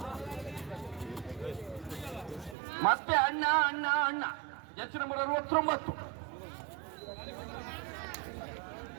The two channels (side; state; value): left; drops out; at 2.6 s